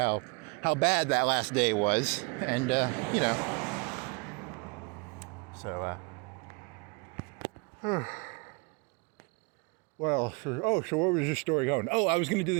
bad that last day was. And, so, Well, so what was your story going? Oh, I was going to do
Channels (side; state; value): left; quieter; 29.9 dB